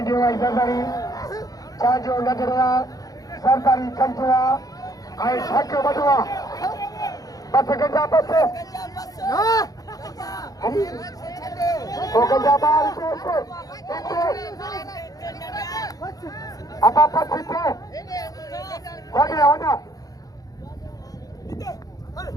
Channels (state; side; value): late; right; 0.18 ms